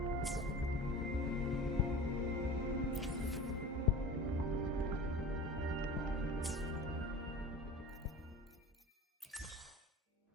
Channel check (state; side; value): normal; both; correlation 0.36